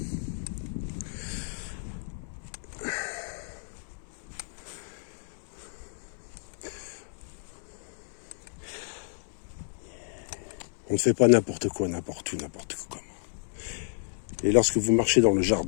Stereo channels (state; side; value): silent; right; 57 dB below the other